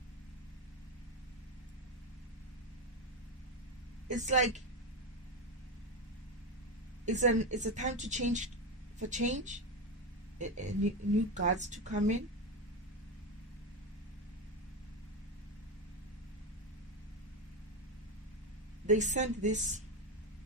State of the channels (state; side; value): normal; both; correlation 0.13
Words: It's like it's a time to change, for change, new guards to come in. They sent this